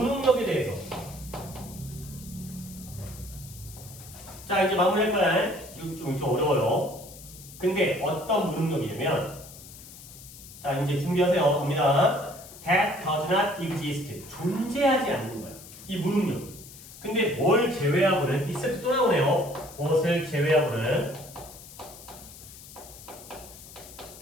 대해서 자 이제 마무리할 거야. 좀 어려워요. 근데 어떤 무능력이냐면 자 이제 준비하세요. 갑니다. That does not exist. 존재하지 않는 거야. 이 무능력이. 근데 뭘 제외하고는 이 세트 또 나오네요. 무엇을 제외하고는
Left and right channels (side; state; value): left; noise; hiss, 17 dB below the sound